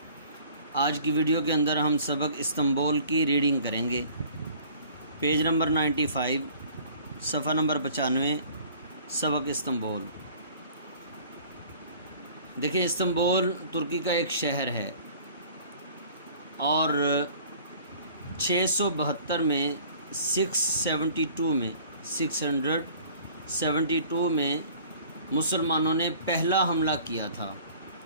آج کی ویڈیو کے اندر ہم سبق استنبول کی ریڈنگ کریں گے۔ پیج نمبر 95، صفحہ نمبر 95، سبق استنبول۔ دیکھیں، استنبول ترکی کا ایک شہر ہے اور 672 میں 672 میں مسلمانوں نے پہلا حملہ کیا تھا۔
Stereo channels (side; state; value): both; inverted; correlation -0.50